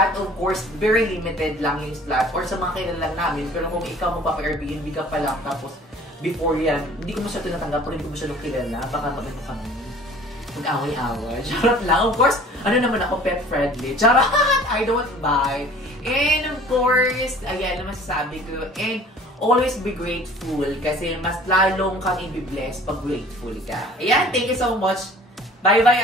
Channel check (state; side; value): normal; both; correlation 0.49